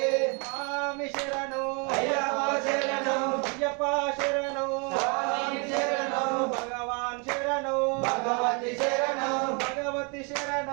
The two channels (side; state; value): left; quieter; 34.0 dB